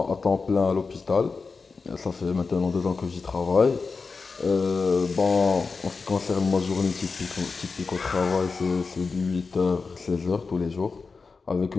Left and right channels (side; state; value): right; quieter; 4.5 dB